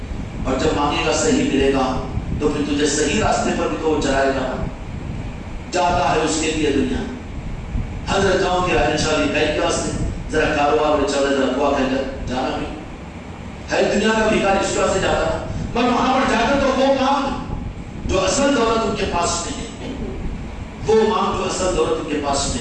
اور جب مانگے گا صحیح ملے گا تو پھر تجھے صحیح راستے پر بھی تو وہ چلائے گا. جاتا ہے اس کے لیے دنیا. حضرت جاؤں کی راجن شاہ کئی کے واسطے ذرا کاروبار میں چلے ذرا دعا کر جانا بھی ہے دنیا کا بھیکاری اس طرح سے جاتا ہے، پر وہاں پر جا کر تو وہ مانگ جو اصل دولت ان کے پاس نہیں ہے، وہ مانگ جو اصل دولت ان کے پاس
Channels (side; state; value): both; identical; correlation 1.00